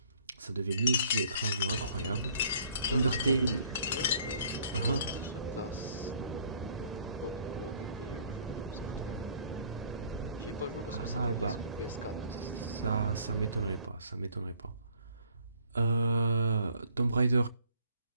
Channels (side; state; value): both; inverted; correlation -0.59